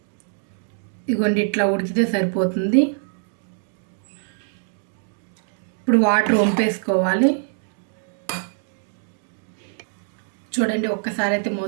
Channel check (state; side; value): silent; left; 63 dB below the other